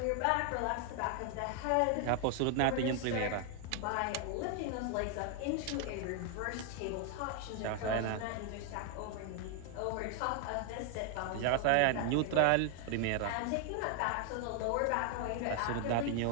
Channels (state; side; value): different; both; correlation 0.00